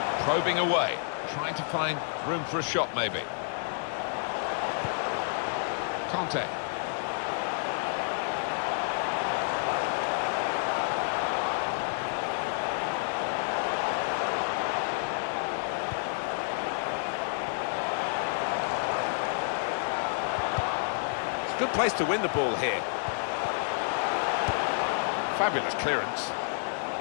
Probing away. Trying to find room for a shot maybe. Conte. It's a good place to win the ball here. Fabulous clearance.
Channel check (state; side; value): silent; right; digital silence